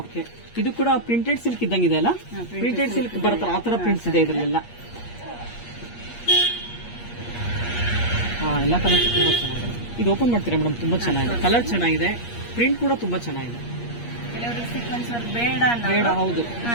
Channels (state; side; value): late; right; 8.5 ms